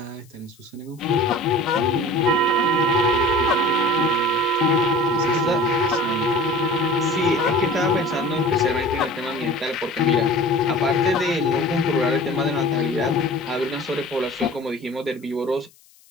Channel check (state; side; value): noise; left; hiss, 29 dB below the sound